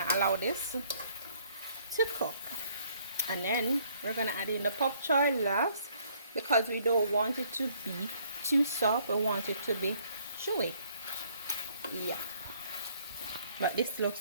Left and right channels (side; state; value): both; inverted; correlation -0.63